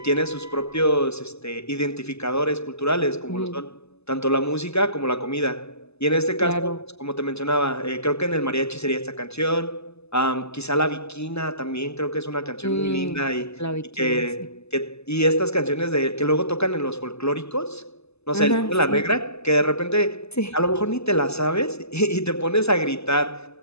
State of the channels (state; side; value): late; right; 0.79 ms